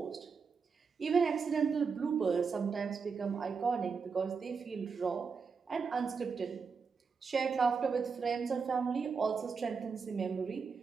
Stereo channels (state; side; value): quieter; left; 5.4 dB